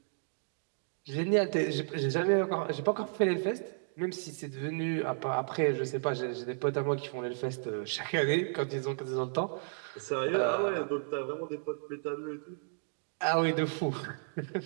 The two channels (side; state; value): left; silent; digital silence